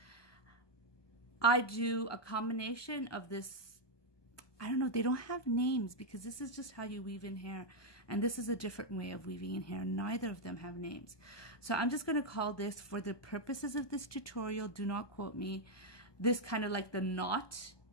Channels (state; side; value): late; right; 1.2 ms